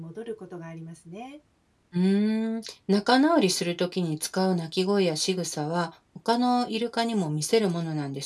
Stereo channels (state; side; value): identical; both; correlation 1.00